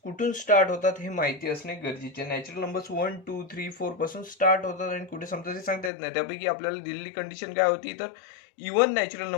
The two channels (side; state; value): right; drops out; at 5.9 s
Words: कुठून स्टार्ट होतात हे माहिती असणे गरजेचे. नॅचरल नंबर्स 1 2 3 4 पासून स्टार्ट होतात आणि कुठे संपतात ते सांगता येत नाही. त्यापैकी आपल्याला दिलेली कंडिशन काय होती तर इव्हन नॅचरल